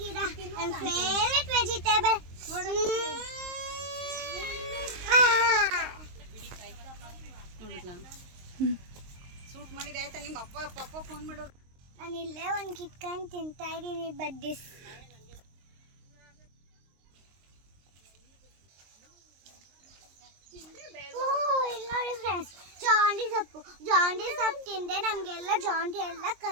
ಗಿಡ ನನ್ನ ಫೇವರೇಟ್ ವೆಜಿಟೇಬಲ್. ನಾನು ಇಲ್ಲೇ ಒಂದು ಕಿತ್ಕೊಂಡು ತಿಂತಾ ಇದ್ದೀನಿ ಬಡ್ಡಿಸ್. ಇಲ್ಲಿ ನೋಡಿ ಫ್ರೆಂಡ್ಸ್, ಜಾಂಡಿ ಸೊಪ್ಪು ತಿಂದ್ರೆ ನಮಗೆಲ್ಲ ಜಾಂಡಿ ಎಲ್ಲ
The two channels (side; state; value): left; late; 23 ms